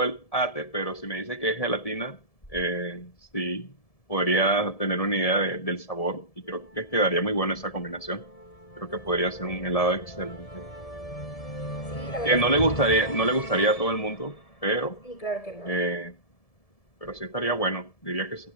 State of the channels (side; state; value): right; late; 1.7 ms